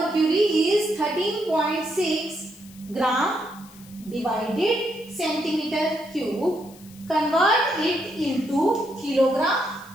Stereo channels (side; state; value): left; noise; hiss, 23 dB below the sound